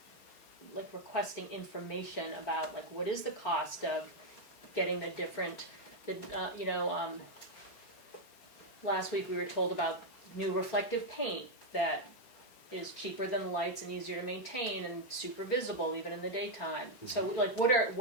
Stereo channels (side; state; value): right; late; 4.4 ms